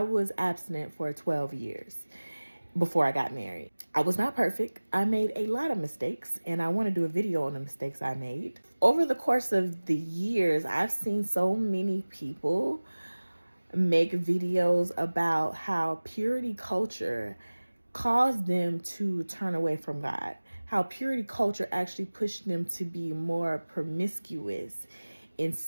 abstinent for 12 years before I got married. I was not perfect. I made a lot of mistakes, and I want to do a video on the mistakes I made. Over the course of the years, I've seen so many people make videos about how purity culture caused them to turn away from God, how purity culture actually pushed them to be more promiscuous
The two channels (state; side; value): inverted; both; correlation -1.00